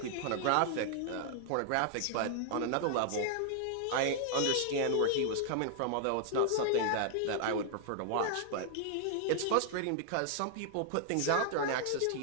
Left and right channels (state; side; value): different; both; correlation -0.01